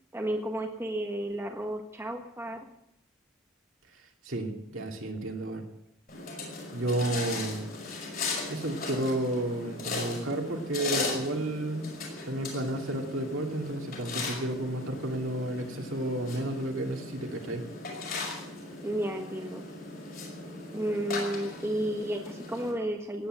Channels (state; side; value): normal; both; correlation 0.46